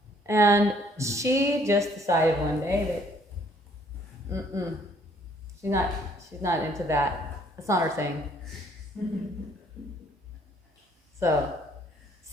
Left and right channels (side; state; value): both; normal; correlation 0.62